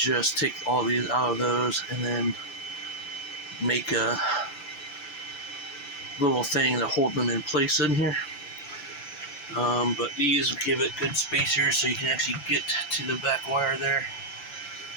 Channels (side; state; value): right; late; 5.9 ms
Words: take all these out of those and then make a little thing to hold them in place in here. But these give it good spacers so you can actually get to the back wire there.